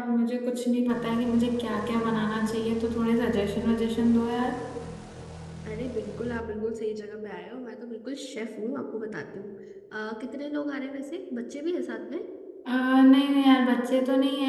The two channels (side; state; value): both; identical; correlation 1.00